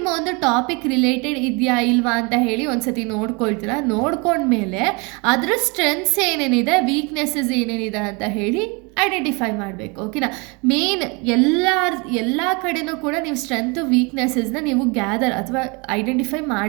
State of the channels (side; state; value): left; quieter; 29.8 dB